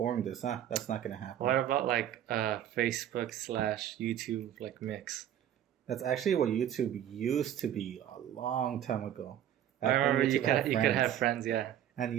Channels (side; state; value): left; quieter; 10.9 dB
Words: this. That's not gonna happen. What about like Facebook / YouTube like mix? That's actually what YouTube used to be a long time ago. I remember you could have friends, yeah. And